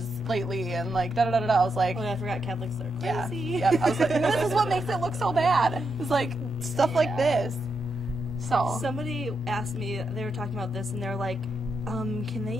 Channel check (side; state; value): left; noise; rumble, 21 dB below the sound